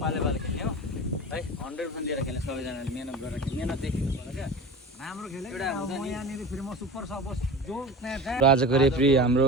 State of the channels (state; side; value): normal; both; correlation 0.33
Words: पाले खेल्ने हो है। 100% दिएर खेल्ने सबैजनाले मेहनत गरेर मेहनत देखेको पर्छ क्या। राम्रो खेल्यो यहाँनिर फेरि म सुपर सपोज जो आजको रेफ्री